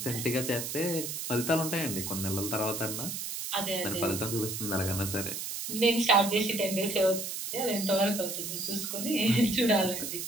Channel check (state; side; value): noise; right; hiss, 5 dB below the sound